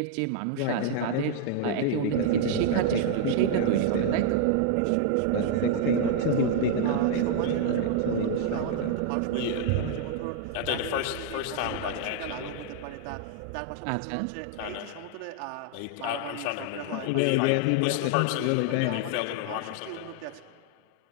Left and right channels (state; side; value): different; both; correlation 0.00